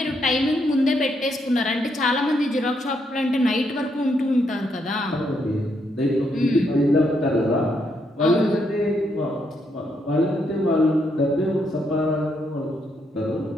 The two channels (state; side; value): normal; both; correlation 0.77